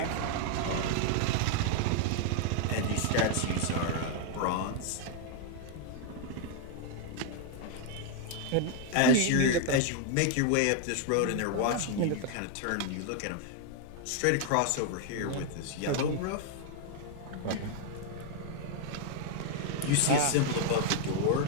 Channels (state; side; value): different; both; correlation 0.00